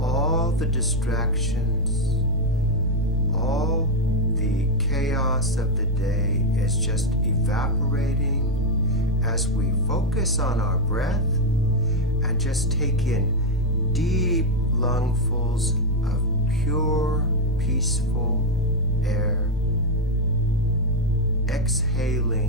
the distractions, all the chaos of the day is just evaporating as we focus on our breath and just take in deep lungfuls of pure, peaceful air,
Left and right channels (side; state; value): both; normal; correlation 0.04